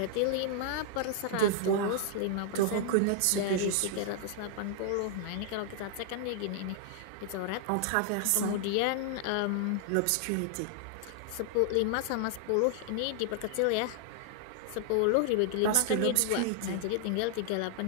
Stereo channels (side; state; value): both; different; correlation -0.01